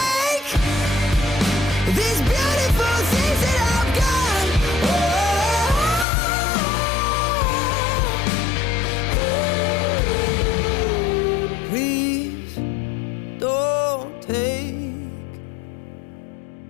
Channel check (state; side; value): drops out; right; at 6.1 s